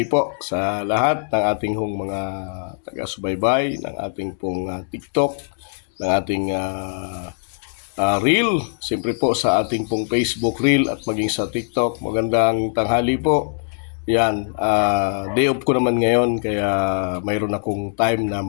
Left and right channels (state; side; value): silent; right; digital silence